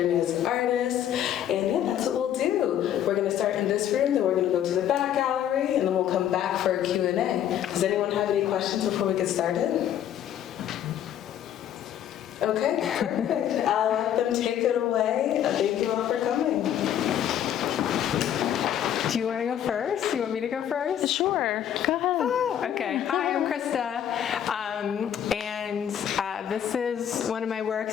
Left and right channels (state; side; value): quieter; right; 10.3 dB